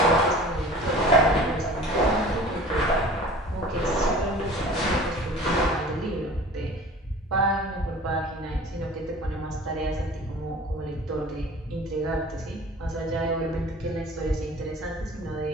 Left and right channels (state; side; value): normal; both; correlation 0.43